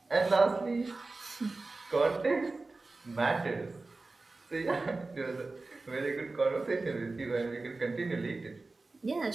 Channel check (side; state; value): left; quieter; 3.5 dB